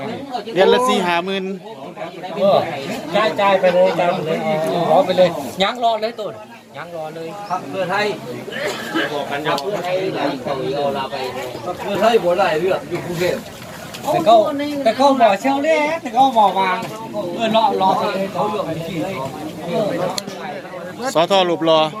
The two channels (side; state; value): both; identical; correlation 1.00